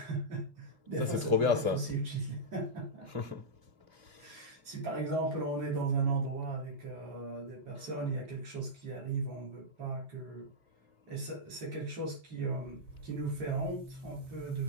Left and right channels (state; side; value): late; left; 2.7 ms